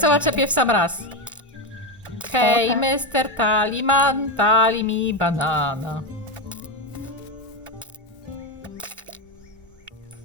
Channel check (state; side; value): normal; both; correlation 0.12